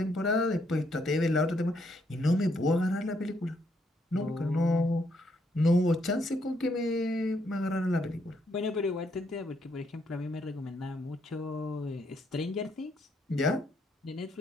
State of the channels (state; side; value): normal; both; correlation 0.74